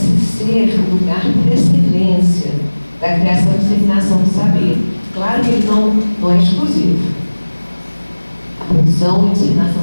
ser o lugar por excelência da criação e disseminação do saber. Claro que ele não é exclusivo. A produção e disseminação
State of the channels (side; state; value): both; inverted; correlation -1.00